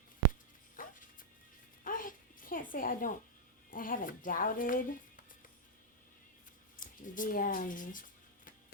I can't say I haven't doubted the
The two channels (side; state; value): both; normal; correlation -0.03